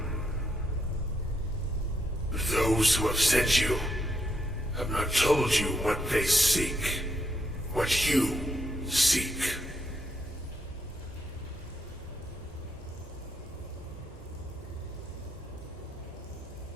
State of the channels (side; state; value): both; normal; correlation 0.77